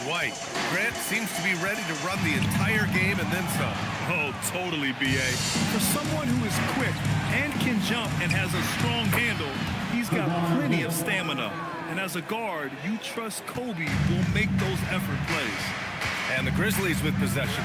White. Grant seems to be ready to run the entire game and then some. Oh, totally, B.A. For someone who is quick and can jump and has a strong handle, he's got plenty of stamina. And as a guard, you trust Kobe will make those effort plays. And the Grizzlies with possession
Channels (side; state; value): both; identical; correlation 1.00